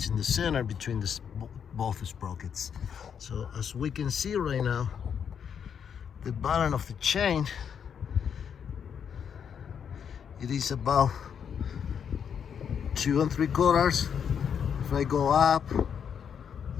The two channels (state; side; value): quieter; right; 7.6 dB